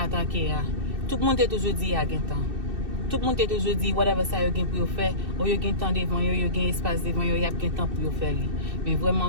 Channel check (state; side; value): late; left; 2.6 ms